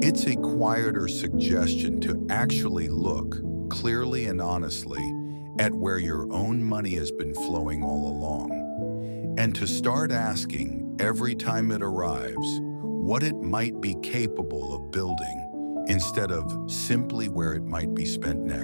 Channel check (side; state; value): both; inverted; correlation -1.00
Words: It's a quieter suggestion to actually look clearly and honestly at where your own money has been flowing all along, and to start asking every time it arrives what it might be capable of building instead of simply where it might be spent